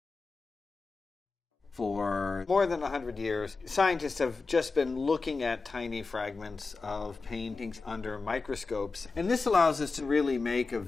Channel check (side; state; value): right; quieter; 4.1 dB